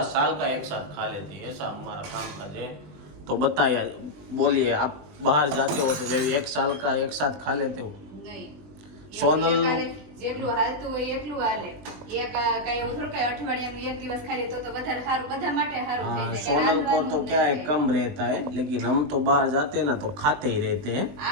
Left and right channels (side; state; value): left; late; 20 ms